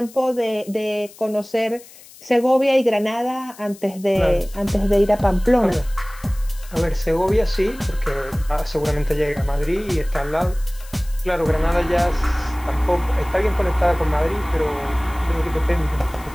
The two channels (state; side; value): noise; left; hiss, 21 dB below the sound